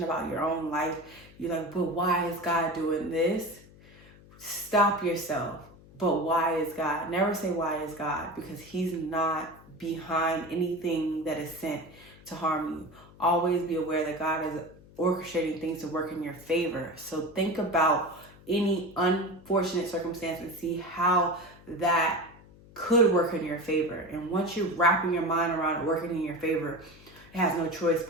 about your own life, you're like, but why is God doing this? Stop yourself. But why is God? Never say why is God, because he's not behind anything that is sent to harm you. Always be aware that God is orchestrating things to work in your favor. So think about any unfortunate circumstance and see how that could work in your favor. And once you're wrapping your mind around it working in your favor, it has no choice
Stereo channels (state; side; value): noise; left; hum, 23 dB below the sound